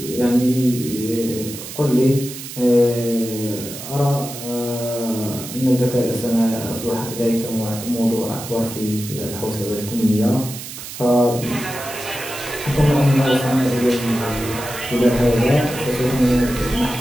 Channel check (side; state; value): right; noise; hiss, 11 dB below the sound